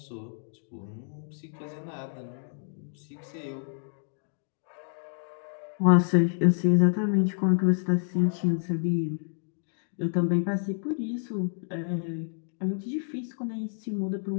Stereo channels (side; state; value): right; silent; digital silence